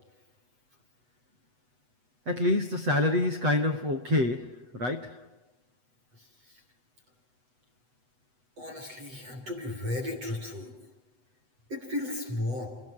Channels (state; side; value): late; left; 8.0 ms